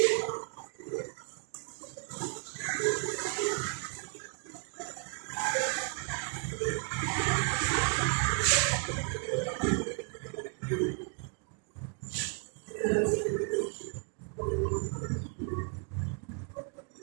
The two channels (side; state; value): left; quieter; 39.8 dB